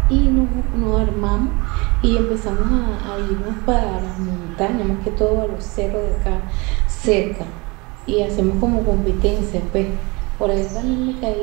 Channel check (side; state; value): left; quieter; 26.5 dB